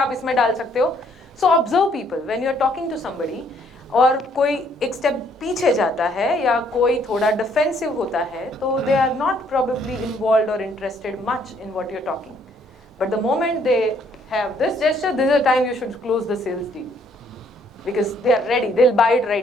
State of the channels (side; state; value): both; normal; correlation 0.66